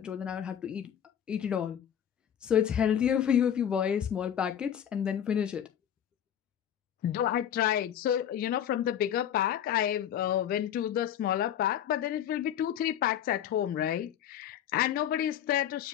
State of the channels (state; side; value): quieter; right; 9.8 dB